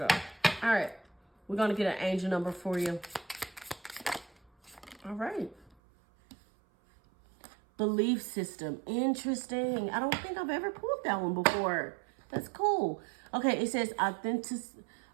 All right. We're going to get an angel number for you. All right. Belief system. Interesting. I don't think I've ever pulled that one before. That's cool. Okay, it says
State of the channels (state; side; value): drops out; left; at 5.7 s